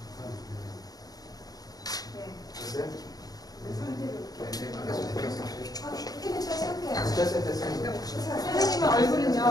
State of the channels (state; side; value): late; right; 0.18 ms